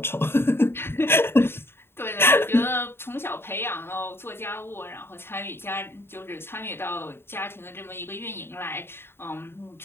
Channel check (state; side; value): late; right; 0.11 ms